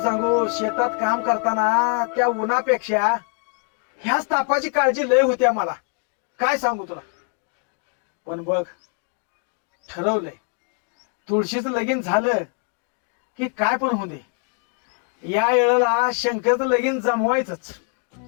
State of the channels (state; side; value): quieter; right; 36.5 dB